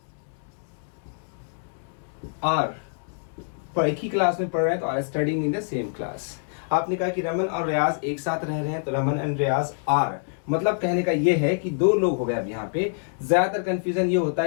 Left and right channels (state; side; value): silent; right; 61 dB below the other